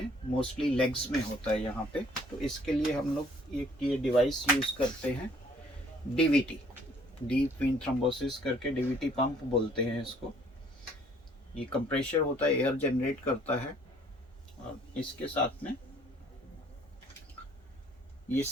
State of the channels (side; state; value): both; normal; correlation 0.60